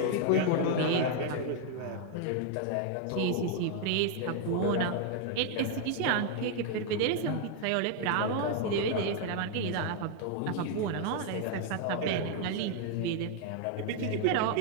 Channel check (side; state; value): both; different; correlation 0.00